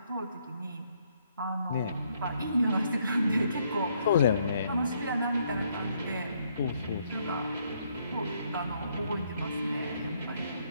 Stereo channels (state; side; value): inverted; both; correlation -0.70